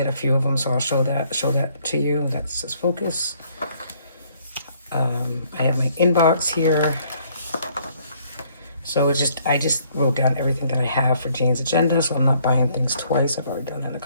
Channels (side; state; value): both; inverted; correlation -0.65